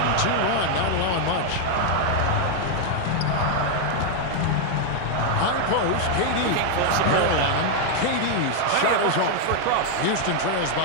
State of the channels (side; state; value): both; different; correlation 0.00